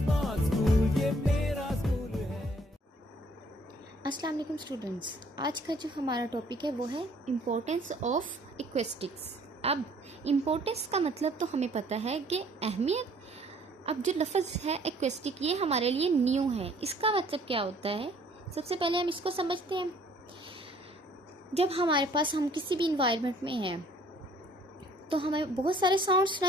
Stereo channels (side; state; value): both; normal; correlation 0.59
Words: school, ये मेरा school है। अस्सलाम वालेकुम स्टूडेंट्स, आज का जो हमारा टॉपिक है वो है इम्पोर्टेंस ऑफ एक्वेस्टिक्स। अब इम्पोर्टेंस का मतलब तो हमें पता है कि अहमियत। अब जो लफ्ज़ है एक्वेस्टिक, ये हमारे लिए न्यू है। इसका मतलब क्या होता है, सबसे पहले हम इसको समझते हैं। जब हमारे पास हम किसी भी इन्वायरमेंट में हैं तो हमें बहुत सारे साउंड